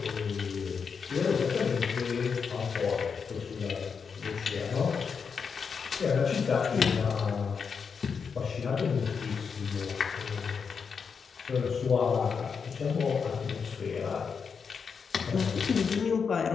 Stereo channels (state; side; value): quieter; right; 6.0 dB